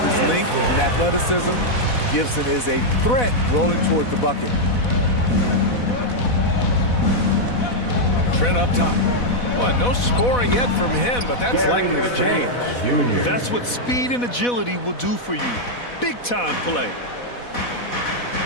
his length and athleticism, Gibson is a threat rolling toward the bucket. Trent up top. Well, no scoring yet from him, but that's likely to change. That's what speed and agility will do for you. Big time play.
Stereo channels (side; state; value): right; late; 4.1 ms